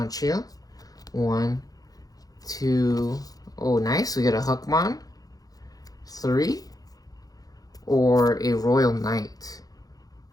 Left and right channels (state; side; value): late; right; 0.18 ms